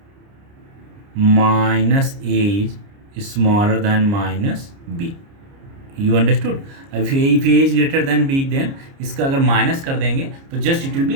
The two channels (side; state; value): left; late; 29 ms